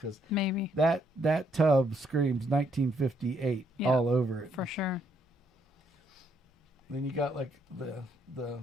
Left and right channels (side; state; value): both; normal; correlation 0.72